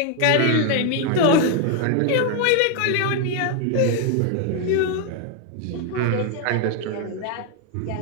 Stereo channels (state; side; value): different; both; correlation 0.01